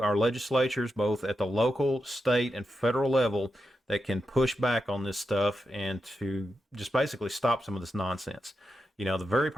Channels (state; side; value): normal; both; correlation 0.88